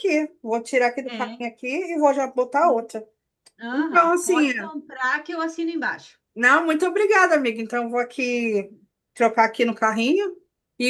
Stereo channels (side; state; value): both; identical; correlation 1.00